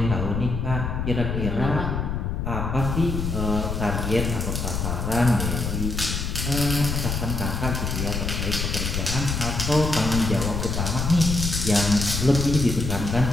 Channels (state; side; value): noise; left; rumble, 2 dB below the sound